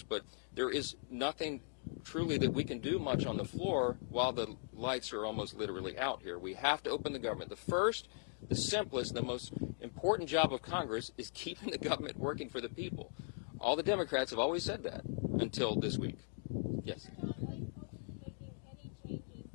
but there is nothing truly that we can do much on the floor while the lights are almost literally out here. We have to open the government. The first, the simplest, the most important job of Congress is keeping the government working for the people. All the Democrats have always said that until this week. Yes.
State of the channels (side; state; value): right; silent; digital silence